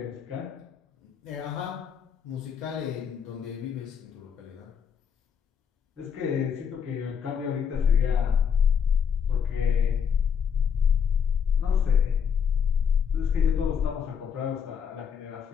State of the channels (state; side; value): quieter; right; 7.2 dB